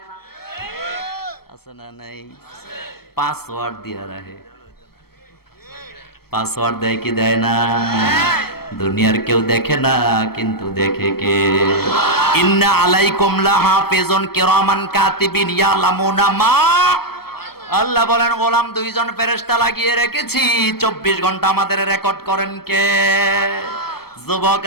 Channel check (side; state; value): right; late; 0.95 ms